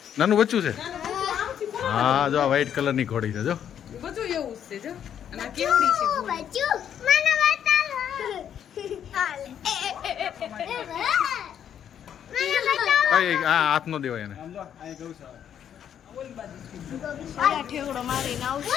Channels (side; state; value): right; quieter; 9.2 dB